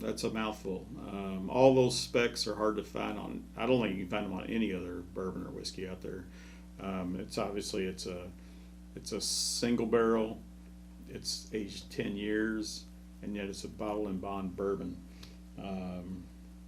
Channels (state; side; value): identical; both; correlation 1.00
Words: a mouthful. All those specs are hard to find on. I don't think you can find them on any other bourbon or whiskey out there. It's obviously it's a single barrel. It's aged 10 years, and yet it's a bottle and bond bourbon.